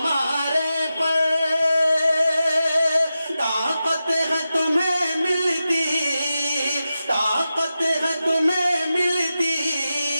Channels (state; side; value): inverted; both; correlation -0.92